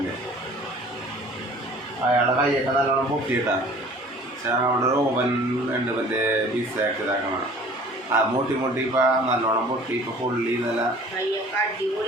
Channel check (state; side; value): normal; both; correlation 0.48